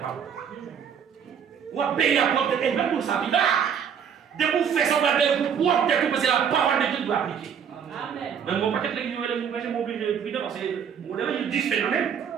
Ou à payer la porte de quelqu'un pour sa vie là. De vous faire ça, pour pouvoir peut-être parce que la parole de Dieu doit appliquer. Mais mon paquet de l'église, je m'oblige de prier parce que on a eu 10 phénomènes.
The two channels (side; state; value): left; quieter; 7.6 dB